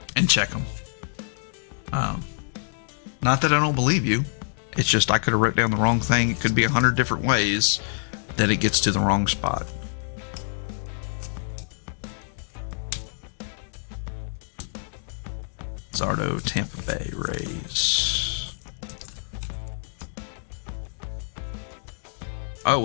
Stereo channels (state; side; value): silent; right; digital silence